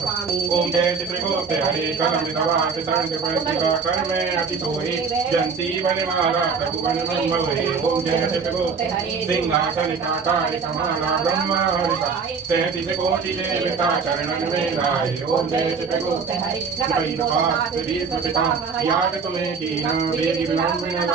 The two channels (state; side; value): quieter; left; 5.4 dB